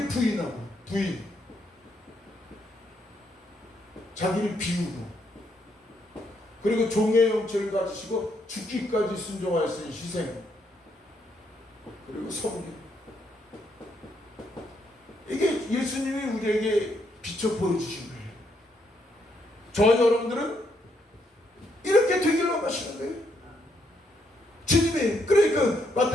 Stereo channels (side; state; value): both; normal; correlation 0.75